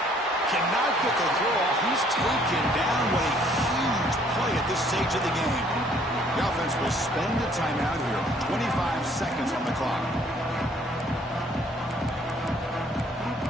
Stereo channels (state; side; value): normal; both; correlation 0.61